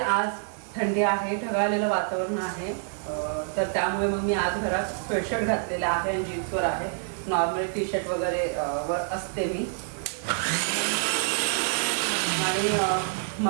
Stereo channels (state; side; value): silent; left; digital silence